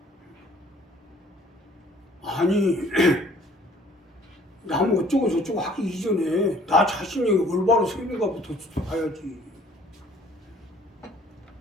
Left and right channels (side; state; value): both; normal; correlation 0.55